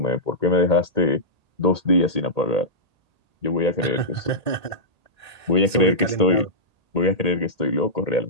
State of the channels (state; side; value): late; left; 1.8 ms